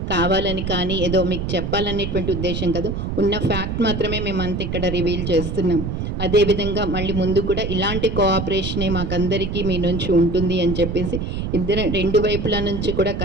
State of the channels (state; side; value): noise; right; rumble, 3 dB below the sound